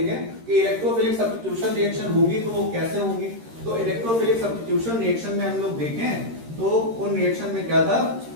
कि इलेक्ट्रोफिलिक सब्स्टिट्यूशन रिएक्शन होगी तो वो कैसे होगी। तो इलेक्ट्रोफिलिक सब्स्टिट्यूशन रिएक्शन में हम लोग देखें तो उन रिएक्शन में क्या था,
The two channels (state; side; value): late; left; 13 ms